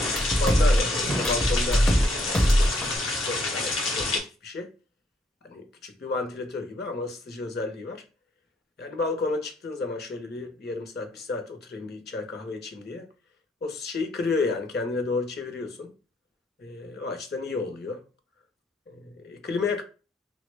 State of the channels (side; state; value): both; normal; correlation 0.70